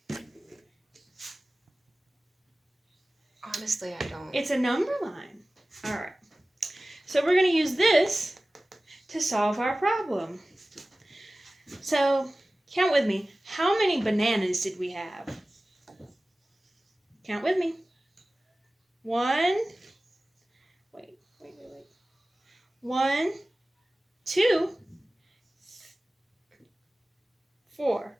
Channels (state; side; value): normal; both; correlation 0.97